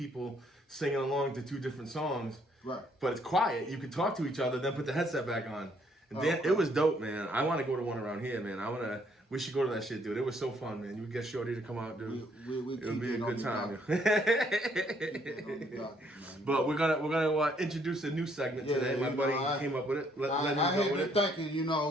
singing along to two different songs. Right. But it's quiet. You can talk to each other, then put the headset back on. And okay. It was dope, man. I want to go to one around here, man. We should go to that shit, dude. It was so fun, man. You would get Shorty to come out, dude. It would be a good time. Docket, But we're gonna introduce a new segment today. My buddy came up with it. I had been thinking,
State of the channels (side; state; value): both; normal; correlation 0.67